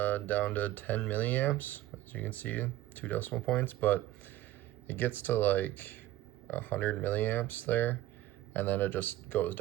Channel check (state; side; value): quieter; left; 15.1 dB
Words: down to 10 milliamps, as you can see, 2 decimal points, but it gets to like 100 milliamps there, and then it just goes